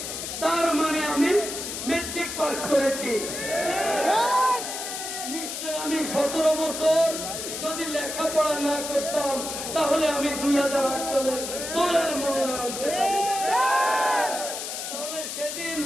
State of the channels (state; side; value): noise; left; hiss, 6 dB below the sound